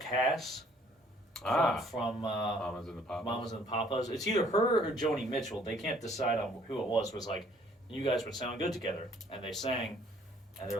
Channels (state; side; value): normal; both; correlation 0.60